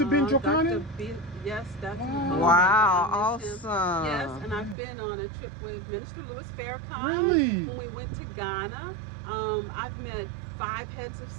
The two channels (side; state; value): left; drops out; at 4.8 s